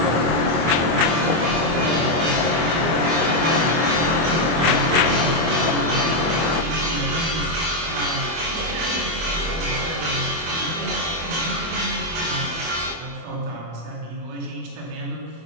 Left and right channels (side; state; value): left; late; 25 ms